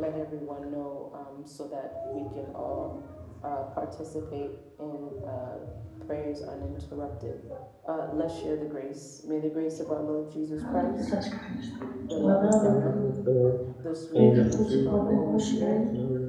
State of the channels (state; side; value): identical; both; correlation 1.00